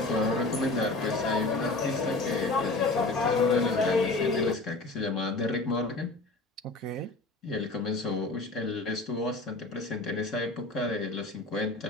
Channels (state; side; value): quieter; right; 3.1 dB